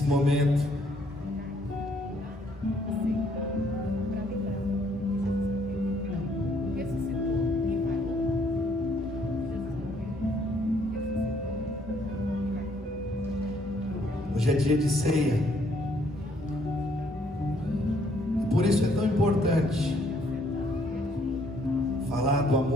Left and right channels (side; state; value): both; normal; correlation 0.67